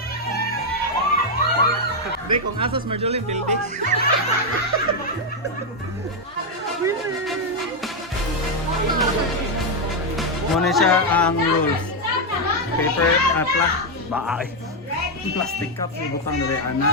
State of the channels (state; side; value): normal; both; correlation 0.02